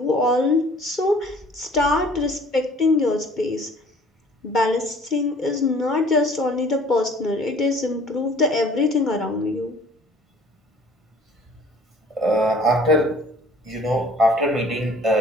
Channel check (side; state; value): both; normal; correlation 0.53